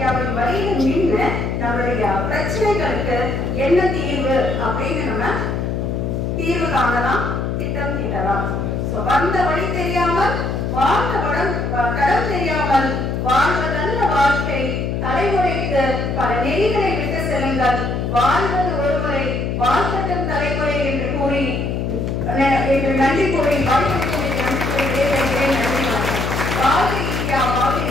வழியில் நின்று நம்மளுடைய பிரச்சனைகளுக்கு என்ன தீர்வு அப்படின்னு நம்ம தீர்வு காணலாம், திட்டம் தீட்டலாம். வந்த வழி தெரியாமல் வாழ்ந்த தடம் தெரியாமல் வாழ்வதல்ல வாழ்க்கை, தலைமுறைக்கு பல நெறிகளை விட்டு செல்லுங்கள், வாழ்வது ஒருமுறை வாழ்க்கட்டும் தலைமுறை என்று கூறி நன்றி கூறி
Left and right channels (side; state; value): left; noise; hum, 1 dB below the sound